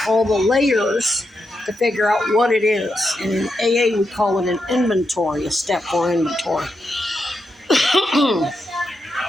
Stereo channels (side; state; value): both; normal; correlation 0.85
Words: all the layers to figure out what it is. And in AA, we call it an inventory, a step 4 inventory.